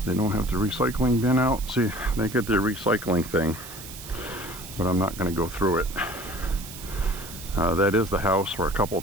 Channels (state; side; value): noise; right; hiss, 13 dB below the sound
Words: They don't have the recycling bin out. See, they get their recycling thing, but I'm not going to go through it. That is the house where a couple